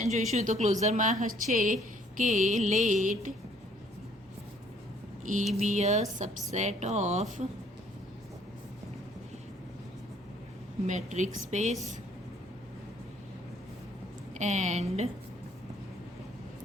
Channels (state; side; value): normal; both; correlation 0.62